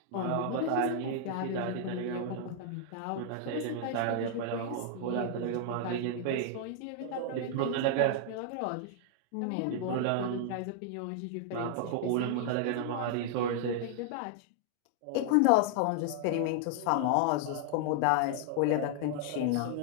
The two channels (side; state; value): both; different; correlation -0.01